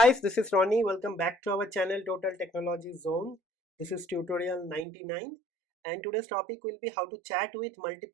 this is Ronnie. Welcome back to our channel Total Technology Zone. This is tutorial 99 and today's topic will be how to chat with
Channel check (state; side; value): drops out; left; at 4.9 s